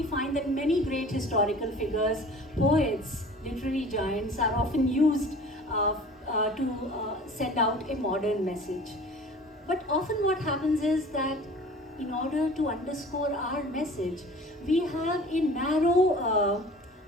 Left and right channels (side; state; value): both; normal; correlation 0.44